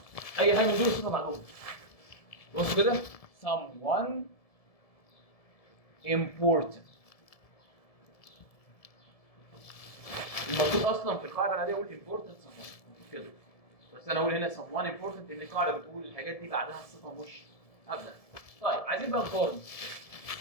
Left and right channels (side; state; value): right; late; 1.7 ms